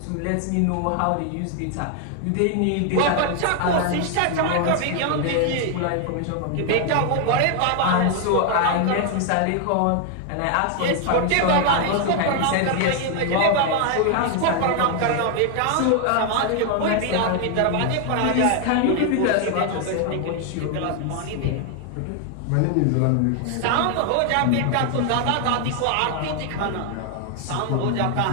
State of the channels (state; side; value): different; both; correlation 0.00